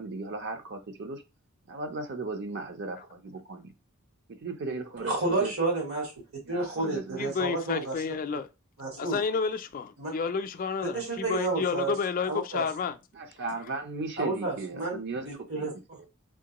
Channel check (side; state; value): both; normal; correlation -0.02